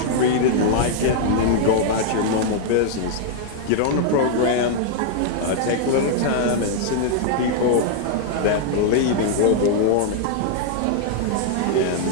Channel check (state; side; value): different; both; correlation -0.01